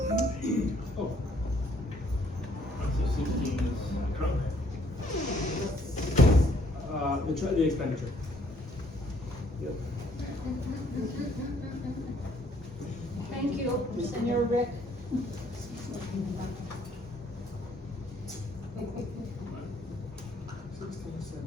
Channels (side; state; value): both; normal; correlation 0.64